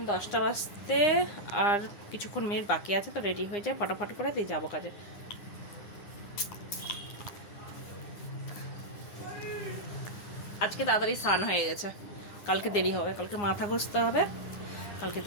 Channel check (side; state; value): right; late; 9.8 ms